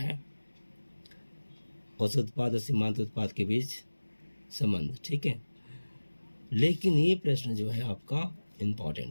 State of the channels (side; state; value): both; inverted; correlation -1.00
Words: औसत उत्पाद और सीमांत उत्पाद के बीच संबंध, ठीक है। लेकिन ये प्रश्न जो है आपका